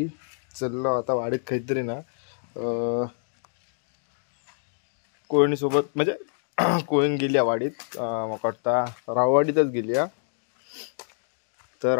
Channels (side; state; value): right; silent; digital silence